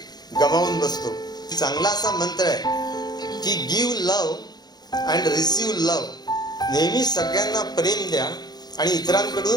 गमावून बसतो. चांगला असा मंत्र आहे की give love and receive love. नेहमी सगळ्यांना प्रेम द्या आणि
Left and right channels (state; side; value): late; right; 0.20 ms